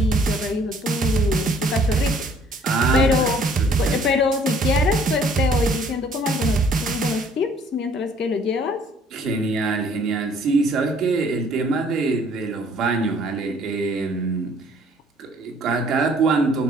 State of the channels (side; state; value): both; normal; correlation 0.59